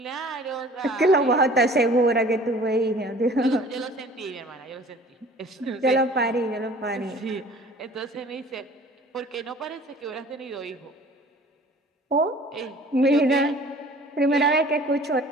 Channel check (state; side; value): normal; both; correlation 0.48